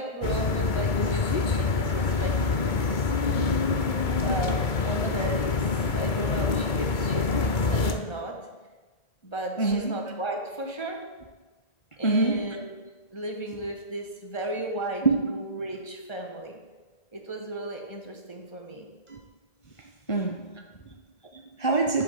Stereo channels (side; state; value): right; late; 2.2 ms